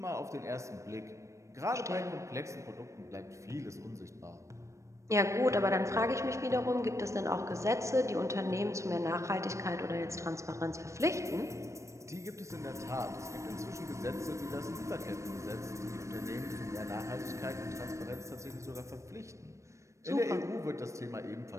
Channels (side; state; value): left; late; 0.15 ms